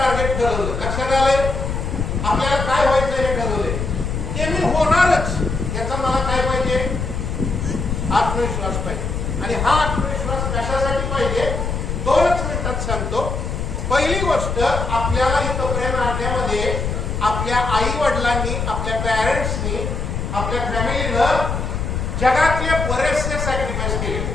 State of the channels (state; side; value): noise; left; rumble, 2 dB below the sound